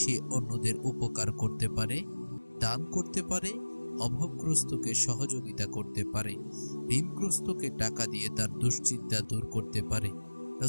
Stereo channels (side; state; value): both; inverted; correlation -1.00